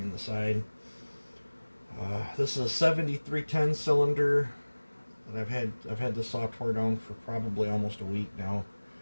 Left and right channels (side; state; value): both; inverted; correlation -1.00